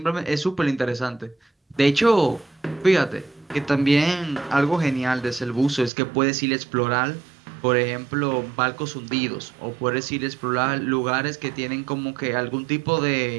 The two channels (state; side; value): drops out; left; at 5.9 s